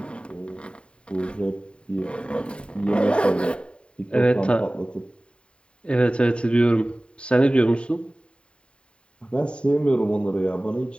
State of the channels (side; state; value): right; late; 0.055 ms